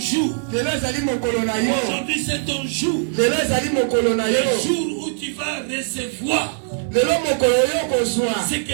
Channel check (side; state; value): left; silent; digital silence